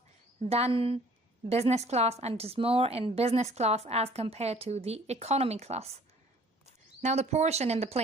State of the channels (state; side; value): normal; both; correlation 0.54